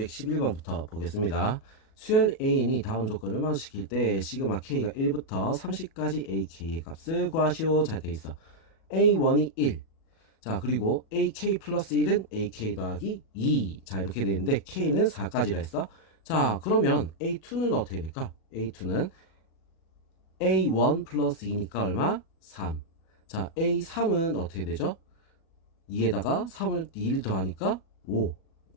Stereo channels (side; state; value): right; late; 37 ms